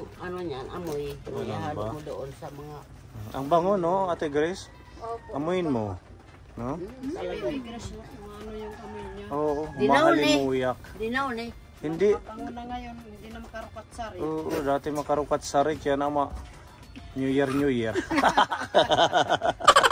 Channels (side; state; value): both; identical; correlation 1.00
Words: ano niyan, amoy. Ganun Ihalo ba? mo doon sa mga... Ang bango, no, Ate Grace? Opo. Amuin mo. No? Talaga. Ano yung amoy niya? Oo, Dinaon eh. mahalimuyak. Dinaon eh. Hindi. Pango na ngayon, hindi na makarukat sari. Oo, dati makarukat sarik yan ama. New Year, New Year.